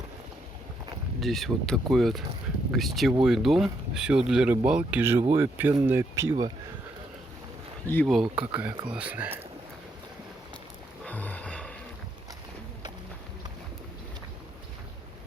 Здесь вот такой вот гостевой дом. Все для рыбалки, живое пенное пиво. Ива какая классная.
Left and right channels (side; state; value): both; normal; correlation 0.76